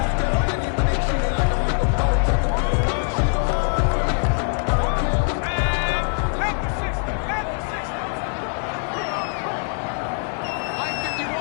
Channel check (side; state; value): right; silent; 55 dB below the other